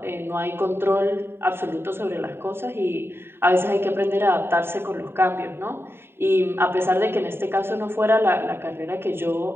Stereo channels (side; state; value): left; late; 0.11 ms